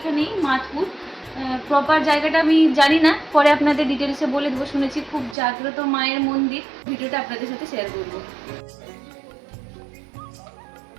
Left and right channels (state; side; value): drops out; left; at 5.4 s